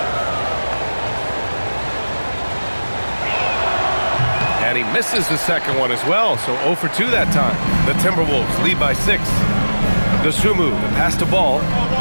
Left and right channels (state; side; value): inverted; both; correlation -1.00